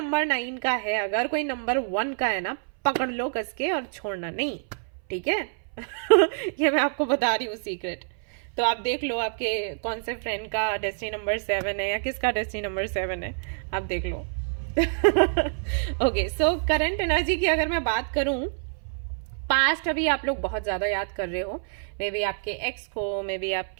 9 का है, अगर कोई नंबर 1 का है ना, पकड़ लो कस के और छोड़ना नहीं, ठीक है। ये मैं आपको बता रही हूँ सीक्रेट। तो आप देख लो आपके कौन से फ्रेंड का डेस्टिनी नंबर 7 है या किसका डेस्टिनी नंबर 7 है, आप देख लो। ओके, सो करंट एनर्जी की अगर मैं बात करूं, पास्ट अभी आप लोग बहुत ज्यादा याद कर रहे हो। मे बी आपके एक्स को, मे बी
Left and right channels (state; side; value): silent; left; 58 dB below the other